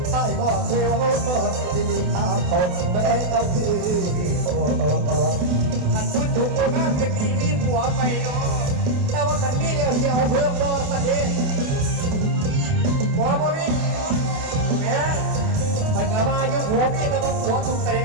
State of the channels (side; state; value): left; late; 29 ms